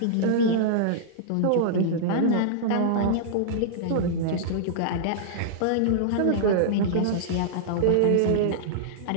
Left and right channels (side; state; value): both; different; correlation -0.02